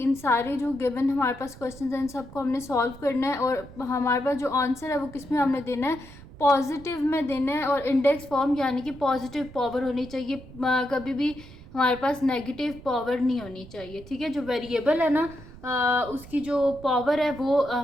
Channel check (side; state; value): right; noise; rumble, 18 dB below the sound